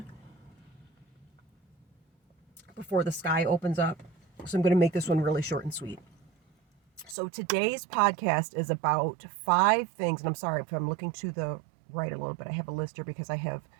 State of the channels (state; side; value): drops out; left; at 7.2 s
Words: before the sky opens up. So I'm going to make this one really short and sweet. So today's podcast is about 5 things, and I'm sorry if I'm looking to the right a little bit. I have a list here because I have